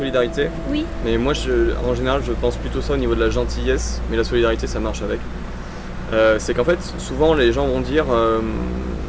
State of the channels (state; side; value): identical; both; correlation 1.00